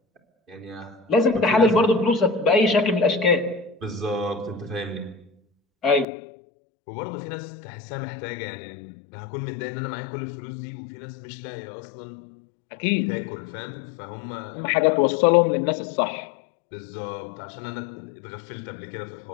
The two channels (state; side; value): drops out; right; at 6.1 s